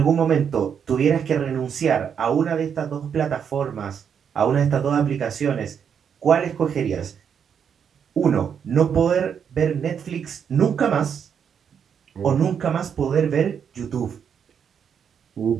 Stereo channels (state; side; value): quieter; left; 7.6 dB